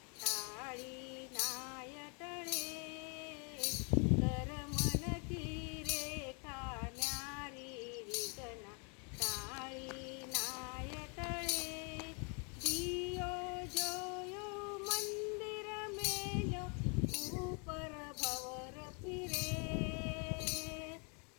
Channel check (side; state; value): right; quieter; 35.7 dB